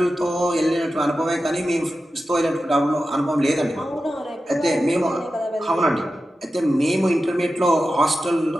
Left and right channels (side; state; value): both; normal; correlation 0.92